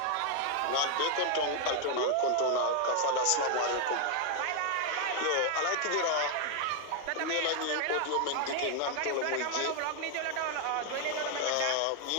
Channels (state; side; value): different; both; correlation 0.00